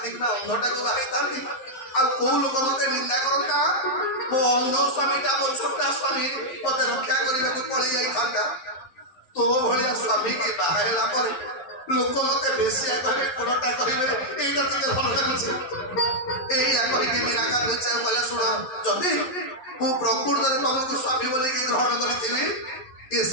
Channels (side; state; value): right; late; 11 ms